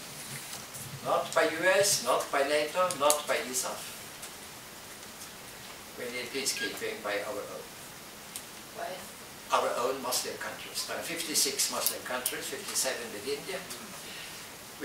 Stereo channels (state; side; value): identical; both; correlation 1.00